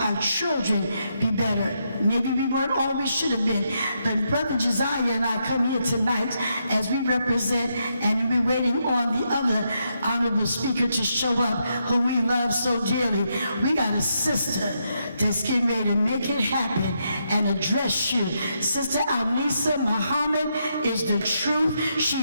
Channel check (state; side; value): inverted; both; correlation -0.80